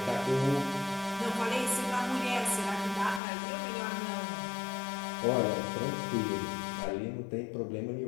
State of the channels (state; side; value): drops out; right; at 3.2 s